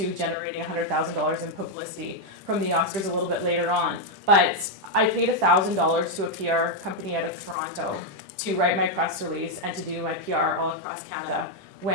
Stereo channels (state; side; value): late; left; 10 ms